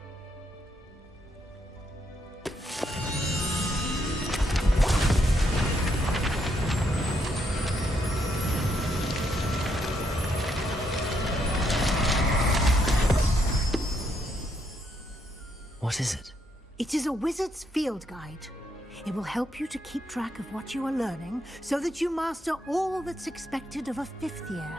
What is it? It is a wizard's field guide. It will help you to keep track of what you are learning so that you master all that's expected of a fifth year.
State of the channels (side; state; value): both; normal; correlation 0.76